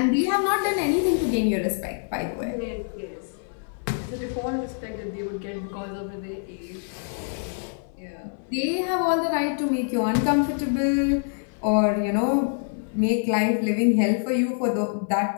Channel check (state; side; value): silent; right; 59 dB below the other